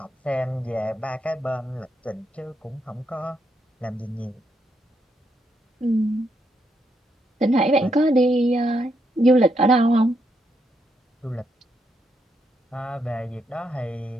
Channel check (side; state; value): both; normal; correlation 0.78